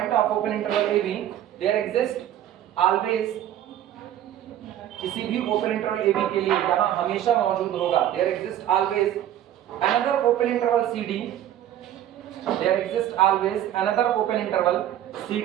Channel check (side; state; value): left; quieter; 11.7 dB